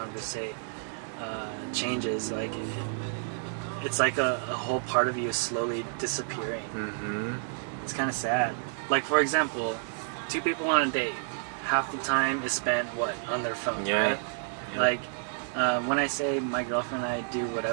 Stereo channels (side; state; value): left; silent; 58 dB below the other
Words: changes. Like, it's like a whole part of you is slowly disappearing. It's kind of sad. Like, for example, 2 people on a date, half the time is spent, on their phone, right? Yeah. Like, when I say my girlfriend and I do